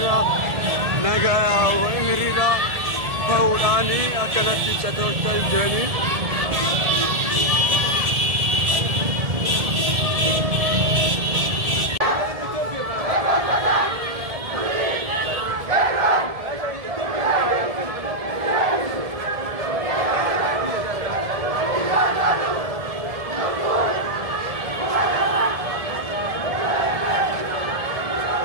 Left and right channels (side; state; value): left; late; 1.7 ms